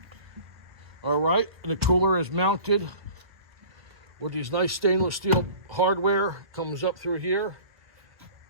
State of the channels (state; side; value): late; left; 1.4 ms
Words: All right, and the cooler is mounted with these nice stainless steel hardware. Comes up through here,